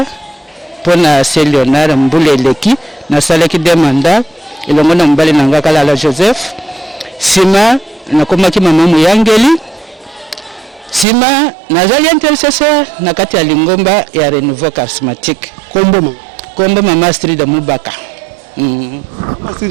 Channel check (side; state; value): left; drops out; at 11.1 s